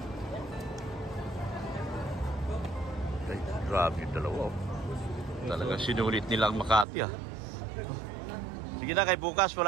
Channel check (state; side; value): drops out; left; at 6.9 s